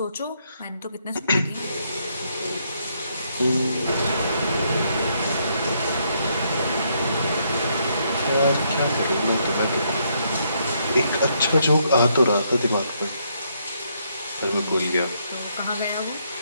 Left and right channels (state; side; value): inverted; both; correlation -0.74